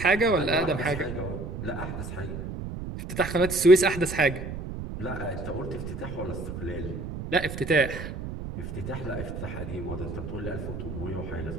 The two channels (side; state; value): right; noise; rumble, 7 dB below the sound